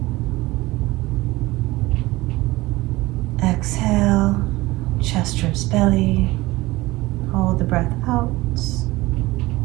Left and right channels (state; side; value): quieter; left; 19.9 dB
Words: Exhale, chest, ribs, belly. Hold the breath out.